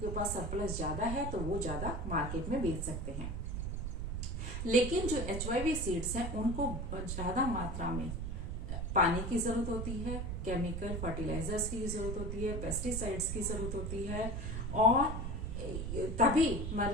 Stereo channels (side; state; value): right; noise; rumble, 3 dB below the sound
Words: पास सरप्लस ज्यादा है तो वो ज्यादा मार्केट में बेच सकते हैं। लेकिन जो HYV सीड्स हैं उनको ज्यादा मात्रा में पानी की जरूरत होती है, केमिकल फर्टिलाइजर्स की जरूरत होती है, पेस्टिसाइड्स की जरूरत होती है, और तभी